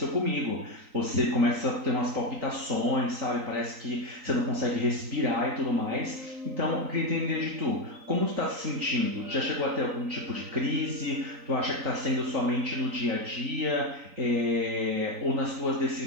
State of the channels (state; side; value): late; left; 3.9 ms